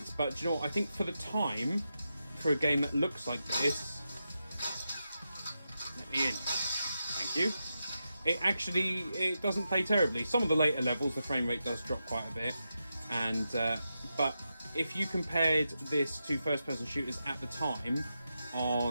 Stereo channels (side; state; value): both; inverted; correlation -0.88